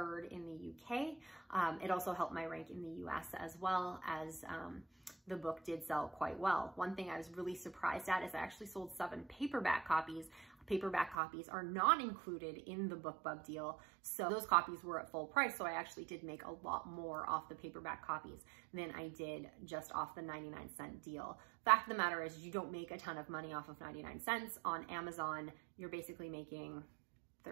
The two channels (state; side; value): drops out; left; at 11.2 s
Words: in the UK. It also helped my rank in the US as well, as the book did sell quite well. One thing I was really surprised at is I actually sold 7 paperback copies. Paperback copies are not included in the BookBub deal, so those copies were at full price, so I actually did make a lot more off the paperback copies than I did just off the 99-cent deal. Fact of the matter is, you don't make a ton of money off of 99 cents. On Amazon, you're basically making